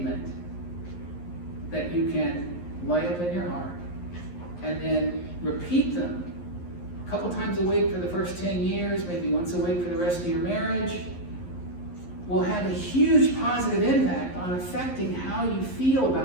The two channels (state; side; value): late; right; 11 ms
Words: that you can lay up in your heart and then repeat them a couple times a week for the first 10 years, maybe once a week for the rest of your marriage, will have a huge positive impact on affecting how you feel